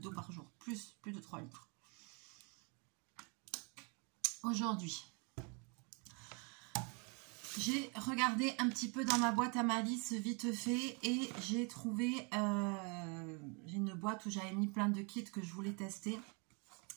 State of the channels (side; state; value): left; quieter; 33.9 dB